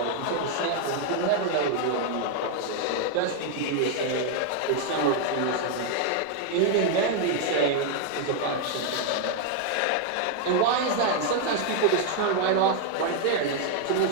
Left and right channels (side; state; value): both; different; correlation 0.00